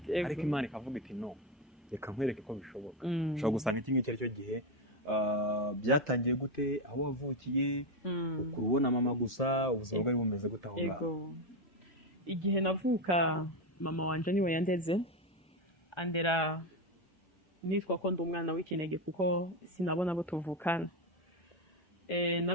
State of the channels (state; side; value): normal; both; correlation 0.11